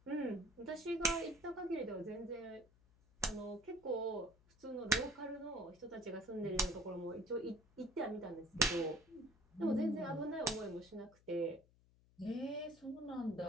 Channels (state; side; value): noise; left; hum, 29 dB below the sound